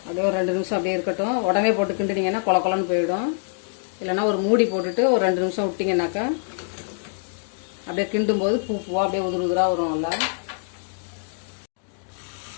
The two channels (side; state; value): right; silent; digital silence